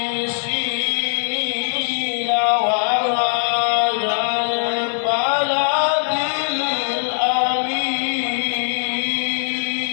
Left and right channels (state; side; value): silent; right; digital silence